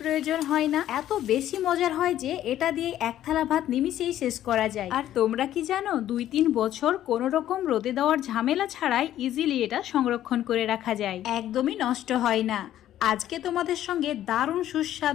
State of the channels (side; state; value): right; quieter; 12.2 dB